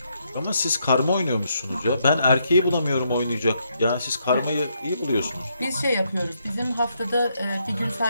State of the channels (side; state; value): both; inverted; correlation -0.76